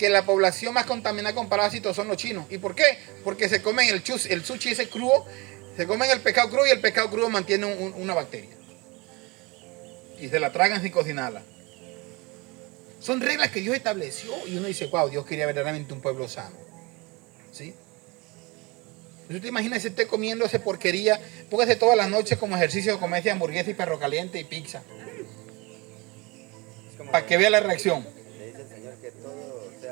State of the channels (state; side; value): quieter; left; 25.8 dB